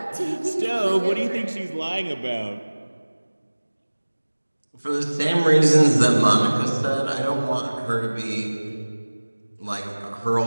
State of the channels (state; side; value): inverted; both; correlation -1.00